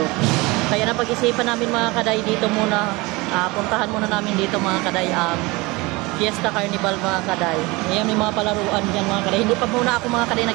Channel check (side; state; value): left; quieter; 23.5 dB